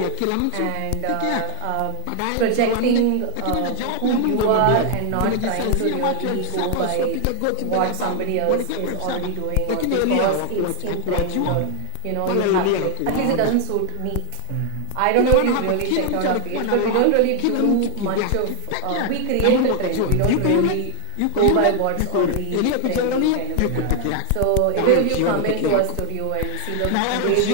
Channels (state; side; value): different; both; correlation 0.01